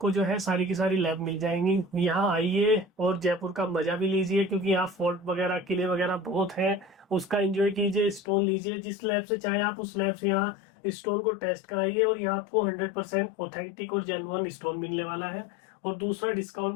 जो है सारी की सारी लैब मिल जाएंगी, यहाँ आइए और जयपुर का मजा भी लीजिए, क्योंकि यहाँ फोर्ट वगैरह किले वगैरह बहुत है, उसका एंजॉय कीजिए, स्टोन लीजिए जिस लैब से चाहे आप, उस लैब से यहाँ स्टोन को टेस्ट कराइए और यहाँ आपको 100% ऑथेंटिक और जेन्युइन स्टोन मिलने वाला है। और दूसरा,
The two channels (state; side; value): drops out; right; at 8.2 s